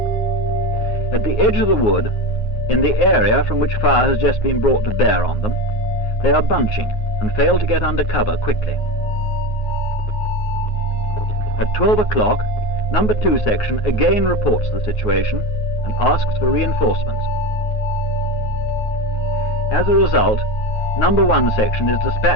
At the edge of the wood, in the area from which fire has just been brought to bear on them, they are bunching and fail to get under cover quickly. At 12 o'clock, number 2 section again reports the situation and asks for reinforcements. As a result, number 1 section is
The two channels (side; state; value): right; late; 9.4 ms